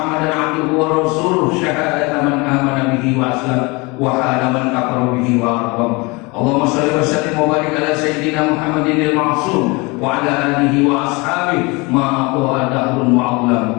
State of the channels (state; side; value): quieter; right; 26.3 dB